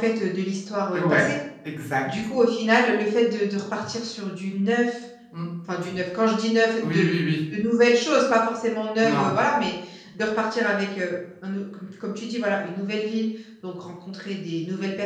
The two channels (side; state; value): both; identical; correlation 1.00